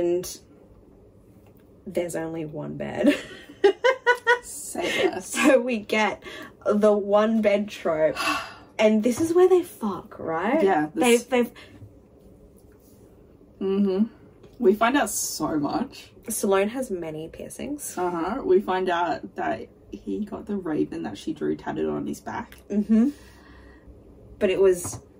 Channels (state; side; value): identical; both; correlation 1.00